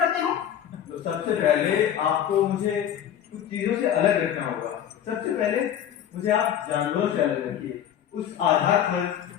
हो। तो सबसे पहले आपको मुझे कुछ चीजों से अलग रखना होगा। सबसे पहले मुझे आप जानवरों से अलग रखिए। उस आधार पर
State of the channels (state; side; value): quieter; right; 9.9 dB